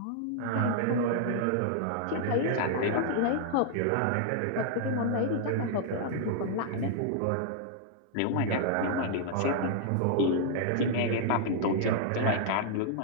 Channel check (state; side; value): different; both; correlation -0.01